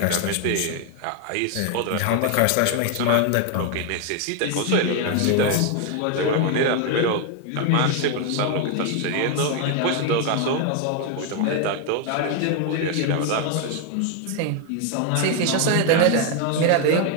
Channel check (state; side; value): different; both; correlation 0.01